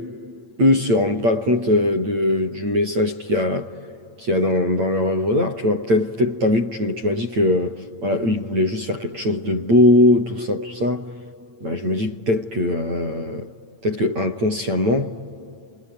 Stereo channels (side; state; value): left; late; 8.8 ms